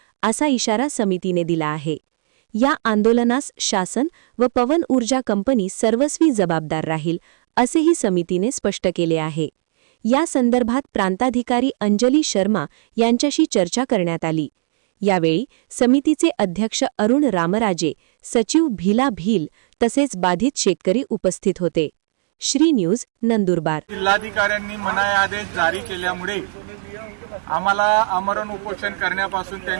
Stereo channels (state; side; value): silent; left; digital silence